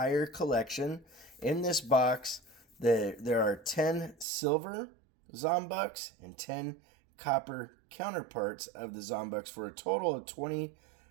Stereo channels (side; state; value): left; drops out; at 4.2 s